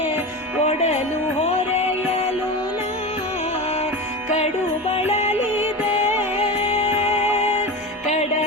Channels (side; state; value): both; normal; correlation 0.25